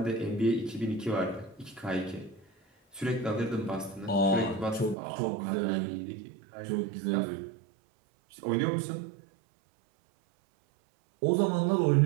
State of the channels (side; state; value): left; drops out; at 5.0 s